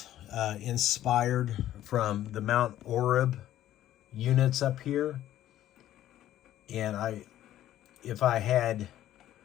inspired from the Mount Orab units up here, and if I had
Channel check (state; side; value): quieter; right; 12.8 dB